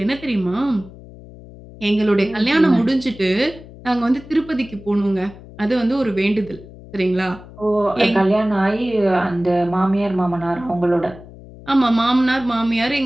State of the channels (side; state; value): left; noise; hum, 18 dB below the sound